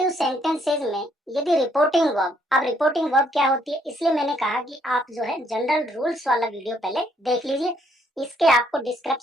सेंटेंसेज में यदि रिपोर्टिंग वर्ब, अब रिपोर्टिंग वर्ब क्या होती है, इसलिए मैंने कहा कि आप जो है जनरल रूल्स वाला वीडियो पहले देख लीजिए। इसके आपको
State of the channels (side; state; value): both; normal; correlation 0.69